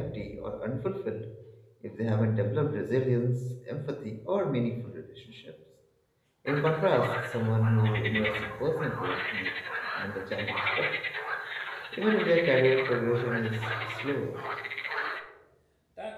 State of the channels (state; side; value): identical; both; correlation 1.00